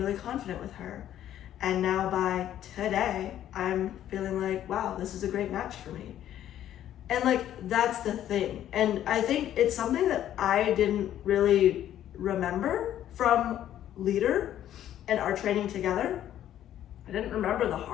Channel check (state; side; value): quieter; right; 11.6 dB